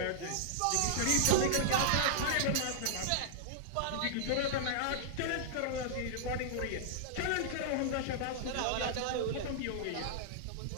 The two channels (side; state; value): both; different; correlation -0.01